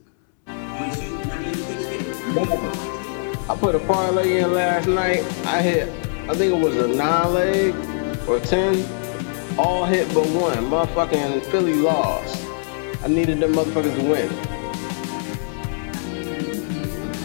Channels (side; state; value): right; silent; 64 dB below the other